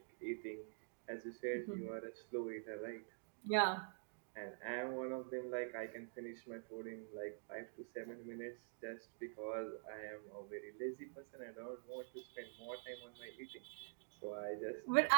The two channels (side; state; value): left; silent; digital silence